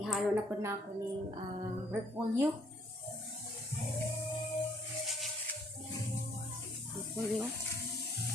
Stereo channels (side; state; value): both; normal; correlation 0.64